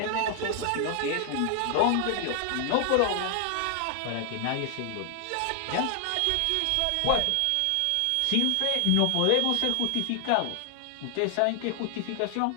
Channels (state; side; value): different; both; correlation 0.00